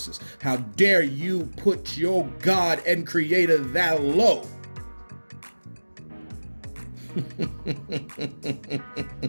How dare you put your God and Creator that low?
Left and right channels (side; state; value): both; inverted; correlation -1.00